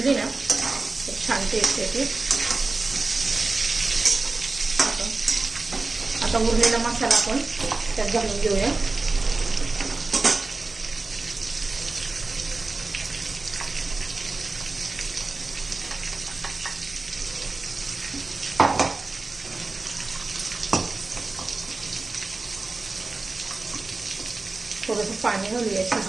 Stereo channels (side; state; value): left; quieter; 3.6 dB